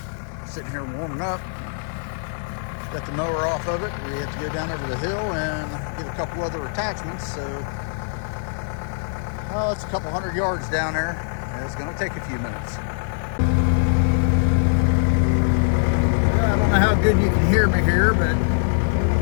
sitting here warming up. Got the mower off of it. We have to go down over the hill and get a couple other attachments. So, it's a couple 100 yards down there. It's going to take a few minutes. I don't know how good you can hear me here, but I'm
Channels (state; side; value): silent; right; digital silence